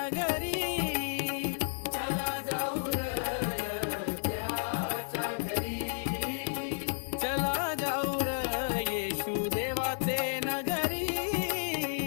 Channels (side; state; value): right; silent; 56 dB below the other